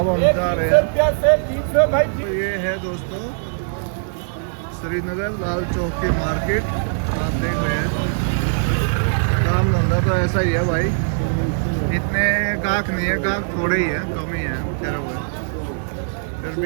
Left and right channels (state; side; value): silent; left; digital silence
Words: हम जा रहे हैं। तो ये है दोस्तों श्रीनगर लाल चौक की मार्केट, आप देख रहे हैं। काम धंधा तो ऐसा ही है भाई, इतने गाहक नहीं है, गाहक थोड़े ही है, कम ही है ठहरे हुए, फिर